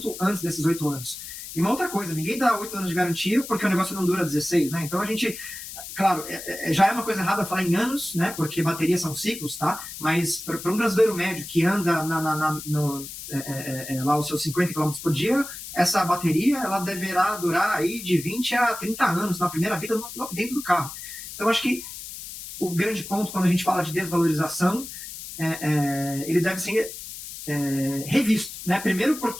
antes desses 8 anos. E uma outra coisa, ninguém dá 8 anos de garantia porque o negócio não dura 16, né? Então a gente, claro, já é uma coisa errada falar em anos, né? Porque baterias são ciclos, tá? Mas para um brasileiro médio que anda lá os seus 50 km por dia, essa bateria ela deverá durar aí de 20 a 30 anos na primeira vida dentro do carro. Então acho que o grande ponto quando a gente fala de desvalorização, ele deve ser revisto, né? Primeiro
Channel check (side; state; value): left; noise; hiss, 11 dB below the sound